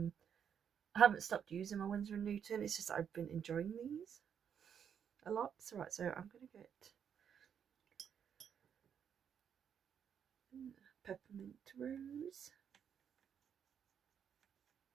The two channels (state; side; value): quieter; left; 8.0 dB